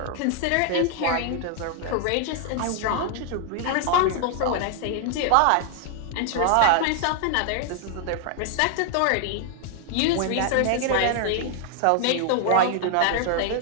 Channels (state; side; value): different; both; correlation 0.00